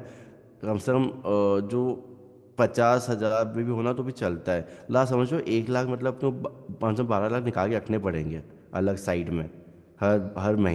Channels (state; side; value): identical; both; correlation 1.00